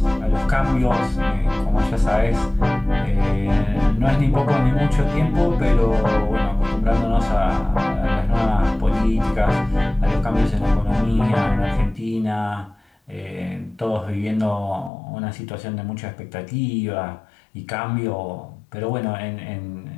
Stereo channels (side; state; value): right; drops out; at 14.9 s